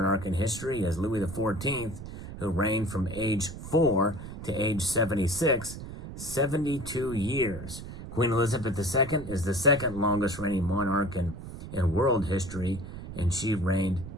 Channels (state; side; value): noise; right; rumble, 11 dB below the sound